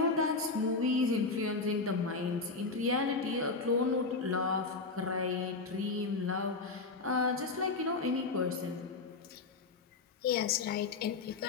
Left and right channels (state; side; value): quieter; right; 4.0 dB